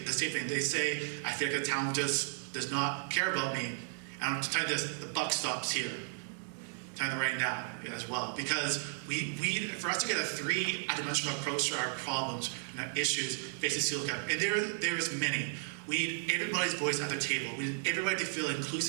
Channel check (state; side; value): silent; left; digital silence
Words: same thing. They say, I feel like the town just does not care about me. And I'm to tell you this, the buck stops here. Time right now as well, because for us to get a three-dimensional approach to our problems and our issues facing Sioux, and there's many. We need everybody's voice at the table. We need everybody to feel